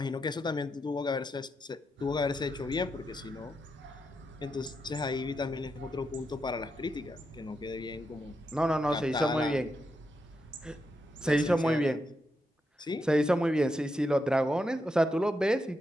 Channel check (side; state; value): both; normal; correlation 0.84